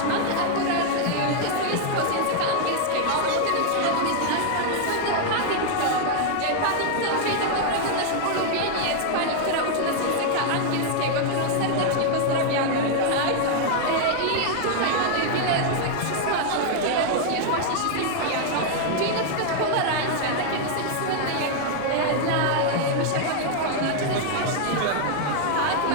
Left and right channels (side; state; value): both; different; correlation 0.00